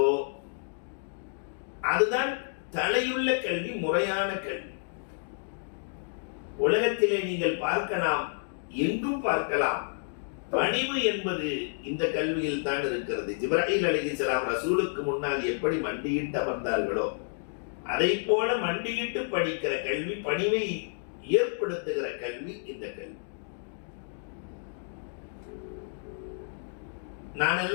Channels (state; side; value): silent; right; digital silence